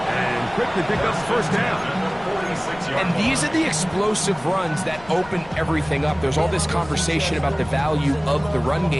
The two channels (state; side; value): noise; left; rumble, 20 dB below the sound